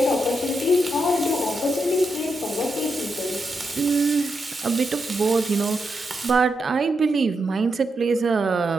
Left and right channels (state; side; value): normal; both; correlation 0.84